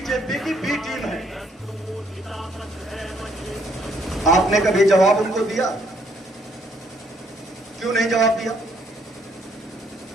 की बी टीम है। आपने कभी जवाब उनको दिया? क्यों नहीं जवाब दिया?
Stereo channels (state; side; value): normal; both; correlation 0.68